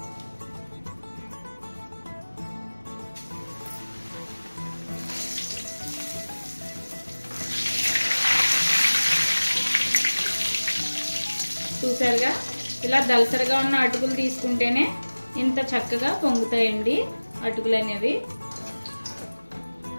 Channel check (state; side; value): inverted; both; correlation -1.00